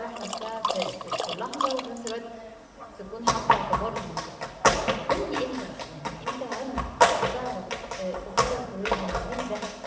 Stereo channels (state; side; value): identical; both; correlation 1.00